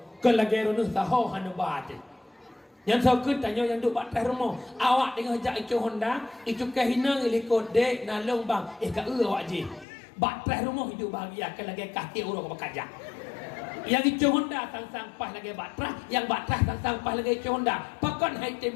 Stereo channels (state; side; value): drops out; right; at 9.9 s